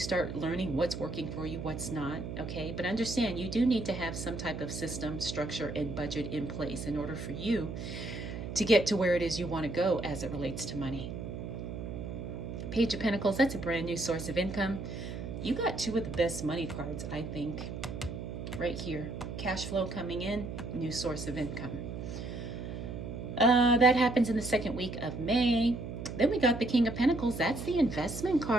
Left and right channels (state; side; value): noise; right; hum, 7 dB below the sound